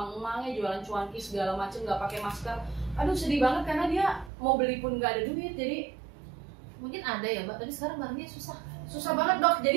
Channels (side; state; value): left; drops out; at 4.3 s